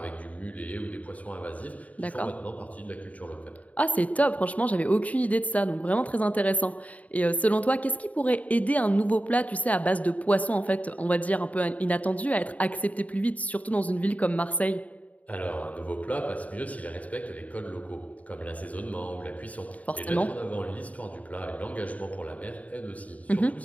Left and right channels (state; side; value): late; right; 0.070 ms